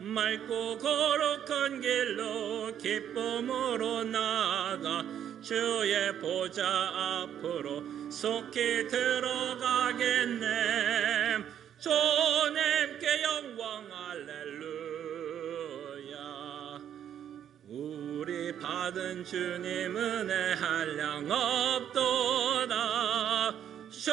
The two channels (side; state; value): left; quieter; 9.7 dB